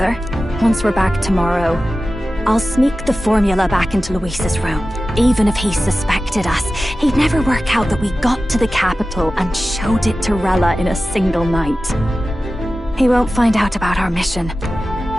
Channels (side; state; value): both; normal; correlation 0.95